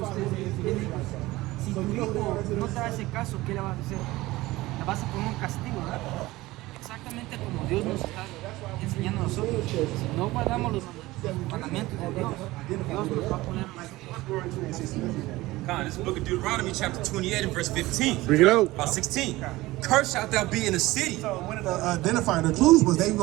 Si tu hijo no te hace caso, ¿qué le vas a hacer? La vas a poner un castigo, ¿verdad? Exactamente como Dios nos está enseñando a nosotros. Si no guardamos los mandamientos de Dios, Dios nos va a poner God, this is the book of Deuteronomy, chapter 28 and verse 15. Bring it out. About 16. Cursed shalt thou be in the city. So one of the identifying the clues was they were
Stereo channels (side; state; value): left; quieter; 18.9 dB